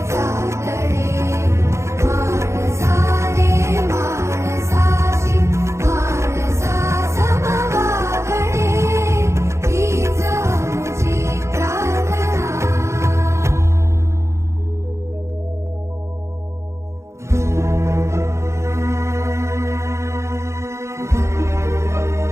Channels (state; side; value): late; left; 0.14 ms